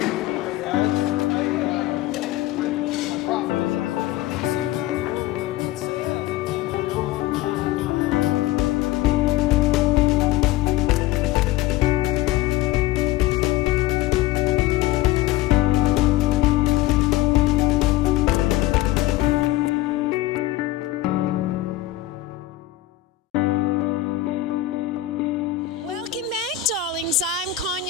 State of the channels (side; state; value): right; quieter; 15.0 dB